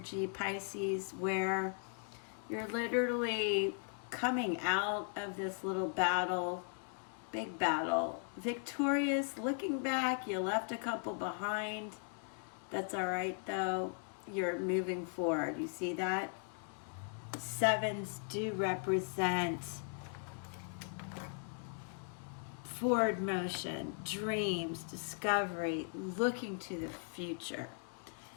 Pisces, where you're literally coming out of this little battle, big battle, victorious, looking back. You left a couple behind. That's all right, though. You're moving forward. You see that? Sevens do represent forward motion, dreams, discovery, looking to the future.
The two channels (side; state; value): right; silent; 52 dB below the other